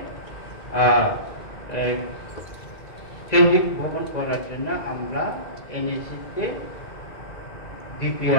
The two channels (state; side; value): late; right; 2.0 ms